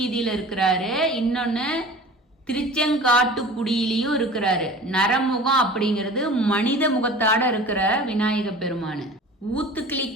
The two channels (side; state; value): both; normal; correlation 0.40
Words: இருக்கிறாரு, இன்னொன்னு திருச்செங்காட்டுக்குடியிலையும் இருக்கிறாரு. நரமுகம் அப்படிங்கிறது மனித முகத்தாட இருக்கிற விநாயக பெருமானு.